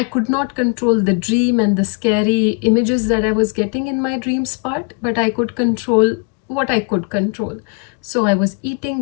could not control the dream and the scary images that I was getting in my dreams part, but I could control what I could control. So I was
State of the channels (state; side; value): quieter; right; 34.5 dB